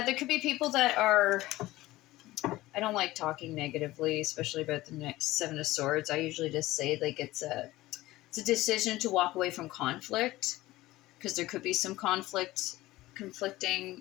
there could be people that are... I don't like talking negatively, especially about the next 7 of Swords. I usually just say like it's a decision to walk away from conflict, because there could be some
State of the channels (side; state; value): right; quieter; 17.6 dB